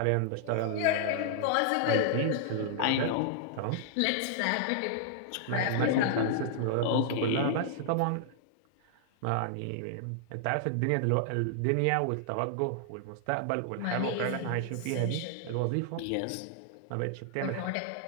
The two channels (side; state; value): both; different; correlation -0.01